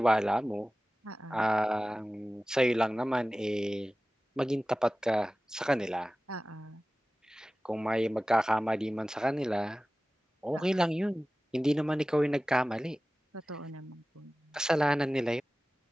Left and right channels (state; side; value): normal; both; correlation 0.97